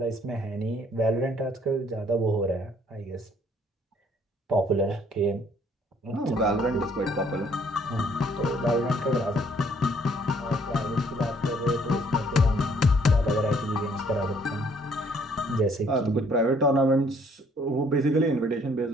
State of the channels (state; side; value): normal; both; correlation 0.63